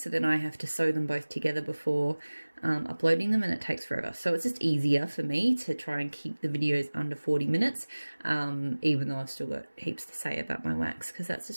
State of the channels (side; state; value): both; inverted; correlation -1.00